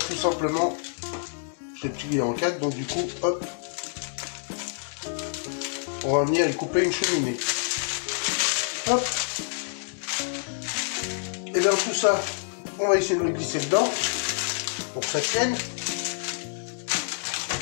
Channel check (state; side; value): silent; right; 60 dB below the other